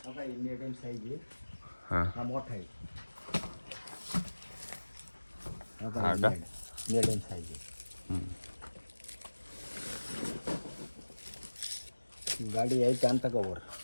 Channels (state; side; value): inverted; both; correlation -1.00